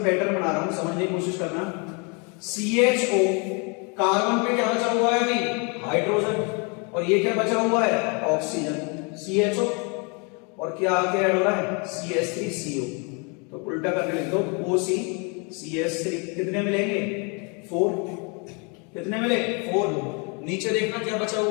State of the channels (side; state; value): right; quieter; 33.5 dB